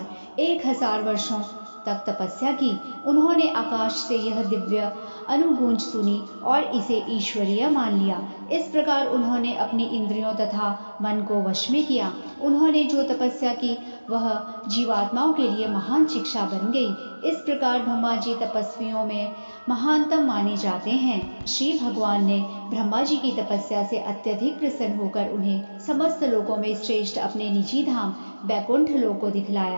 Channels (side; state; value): both; inverted; correlation -1.00